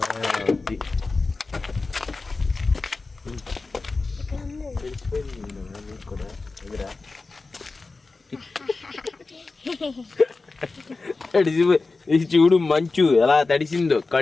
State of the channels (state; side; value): quieter; right; 3.8 dB